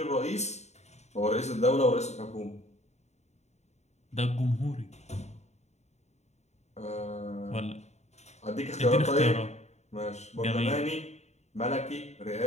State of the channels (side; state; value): right; late; 0.32 ms